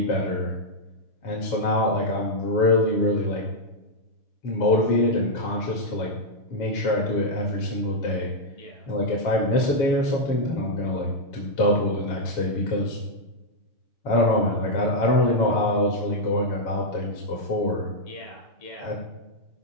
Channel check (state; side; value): late; right; 7.0 ms